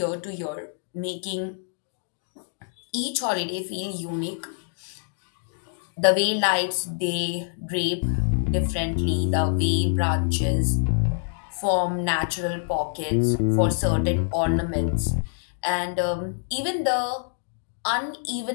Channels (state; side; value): silent; right; digital silence